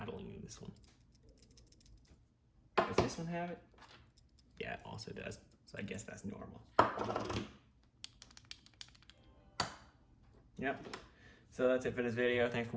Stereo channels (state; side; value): identical; both; correlation 1.00